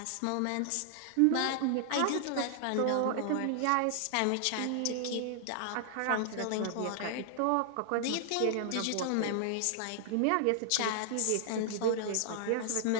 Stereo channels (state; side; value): different; both; correlation 0.00